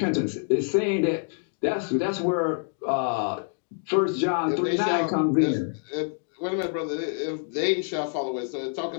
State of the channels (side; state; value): right; silent; 61 dB below the other